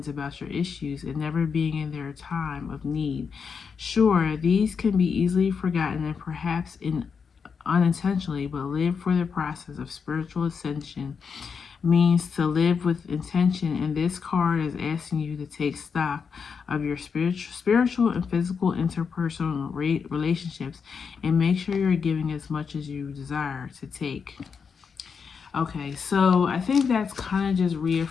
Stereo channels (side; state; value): right; quieter; 6.0 dB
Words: about your issues and never being in their time of need. Sure, these can be easily forgotten and perhaps unintentionally, but live for the process of spiritual ascension means to live with intention, and this card is asking you to take stock of your spiritual and physical interpersonal relationships and make sure you're giving as much as you desire to take. Okay, so I think that's kind of just